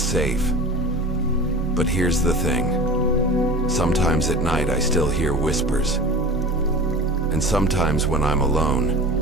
safe. But here's the thing. Sometimes at night I still hear whispers. And sometimes when I'm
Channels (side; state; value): both; normal; correlation 0.36